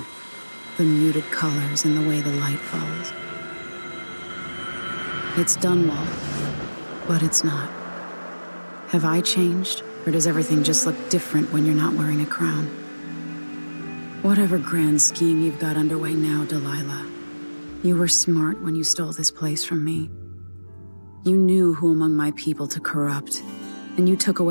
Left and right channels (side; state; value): both; inverted; correlation -1.00